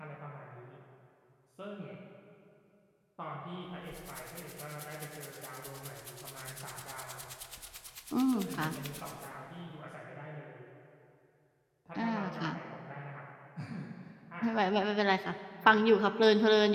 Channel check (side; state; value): both; identical; correlation 1.00